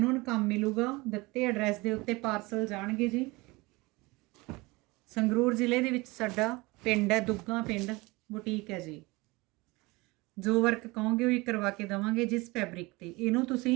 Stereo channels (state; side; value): quieter; left; 23.5 dB